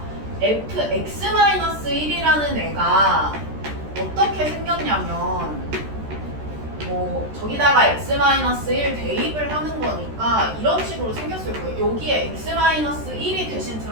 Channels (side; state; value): left; late; 13 ms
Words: fx-1이라는 애가 어떻게 생겼냐면 뭐 저기다가 x-1 대입을 하는 거니까 이런 식으로 생겼을 거예요. 여기에 x-1이 대신